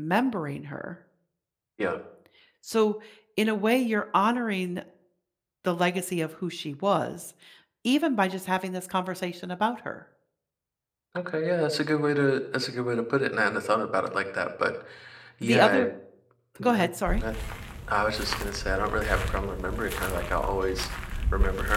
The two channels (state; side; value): identical; both; correlation 1.00